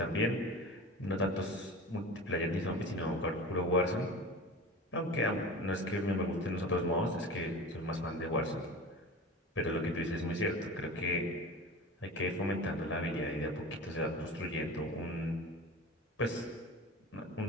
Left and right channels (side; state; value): both; normal; correlation 0.33